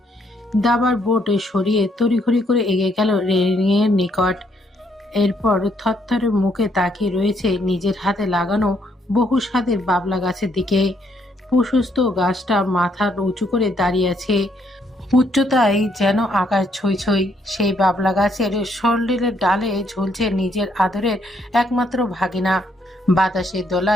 দাবার বোর্ড সরিয়ে তড়িঘড়ি করে এগিয়ে গেল রেলিংয়ের নিকট। এরপর থরথরে মুখে তাকিয়ে রয়েছে নিজের হাতে লাগানো বহু স্বাদের বাবলা গাছের দিকে। প্রশস্ত গাছটা মাথা উঁচু করে দাঁড়িয়ে আছে, উচ্চতায় যেন আকাশ ছই ছই। সেই বাবলা গাছের শরীরের ডালে ঝুলছে নিজের আদরের একমাত্র ভাগিনা। বাতাসে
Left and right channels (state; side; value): normal; both; correlation 0.72